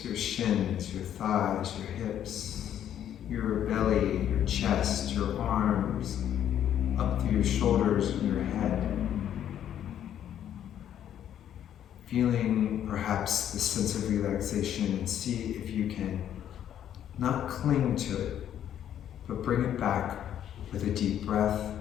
your shins, your thighs, your hips, your belly, your chest, your arms, up through your shoulders and your head. Feeling perhaps the sense of relaxation, and see if you can not cling to it, but bring it back with a deep breath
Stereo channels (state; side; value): quieter; right; 10.3 dB